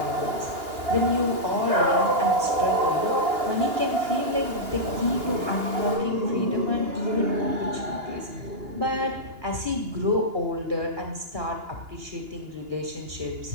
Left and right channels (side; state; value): left; late; 2.8 ms